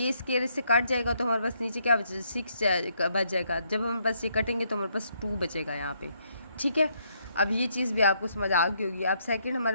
स्केयर इससे कट जाएगा तो हमारे पास नीचे क्या बचेगा 6 बच जाएगा। जब हमारे पास ये कटेंगे तो हमारे पास 2 बचेगा यहाँ पे, ठीक है, अब ये चीज़ भी आपको समझ आ गई होगी। अब सेकंड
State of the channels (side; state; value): both; inverted; correlation -0.73